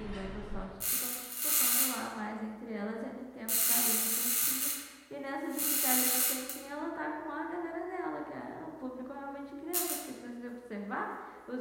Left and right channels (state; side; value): identical; both; correlation 1.00